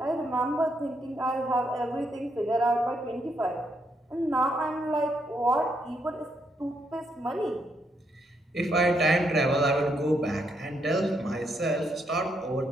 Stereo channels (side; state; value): both; normal; correlation 0.77